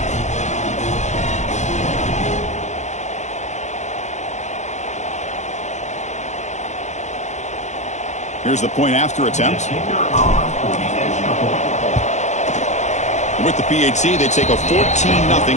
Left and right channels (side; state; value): right; late; 0.34 ms